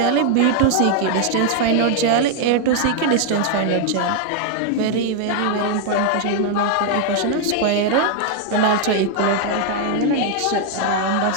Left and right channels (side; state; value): both; different; correlation 0.00